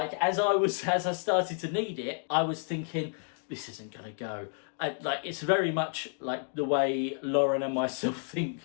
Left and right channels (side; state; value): right; silent; 57 dB below the other